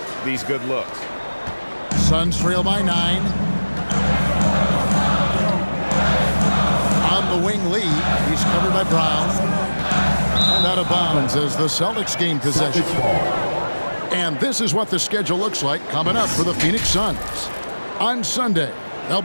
these good looks. Suns trail by 9. On the wing, Lee. He's covered by Brown. And out of bounds as the Celtics gain possession. And this is what the schedule looks like coming up for the Phoenix Suns. On Sunday, they'll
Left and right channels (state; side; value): inverted; both; correlation -1.00